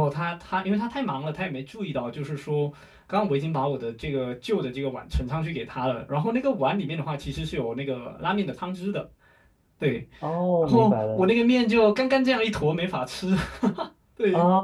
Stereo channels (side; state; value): both; identical; correlation 1.00